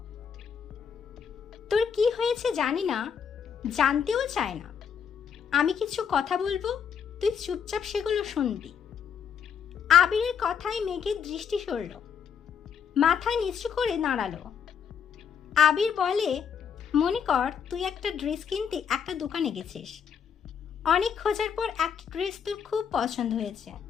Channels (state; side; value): quieter; right; 7.3 dB